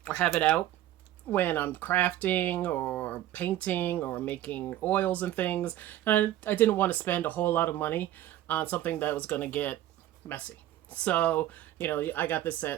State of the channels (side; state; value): left; quieter; 13.4 dB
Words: or have it out when I'm crafting or painting or making oils and things. And I didn't want to spend a whole lot of money on something that was going to get messy. So, I got this